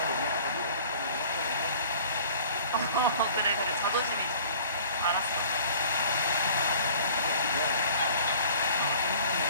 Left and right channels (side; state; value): both; inverted; correlation -0.49